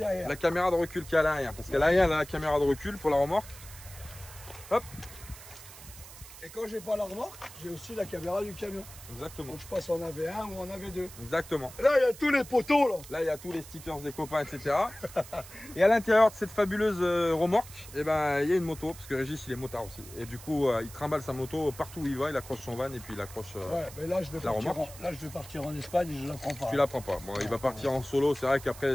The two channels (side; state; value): right; noise; hiss, 16 dB below the sound